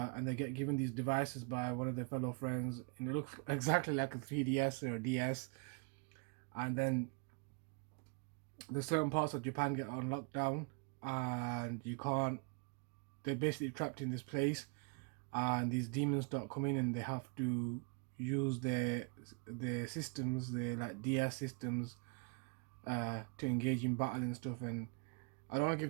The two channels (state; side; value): quieter; left; 34.5 dB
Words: they get given these devices by one of their fellow friends, and it looks exactly like a 3DS or a DS. And then the certain parts of Japan get on lockdown, and you can't. They're basically trapped in this place, and these demons start coming, and they have to use their systems, their like DS systems, to engage in battle and stuff. And I don't want to